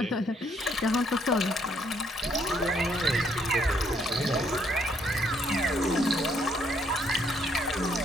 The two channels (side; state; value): both; normal; correlation 0.69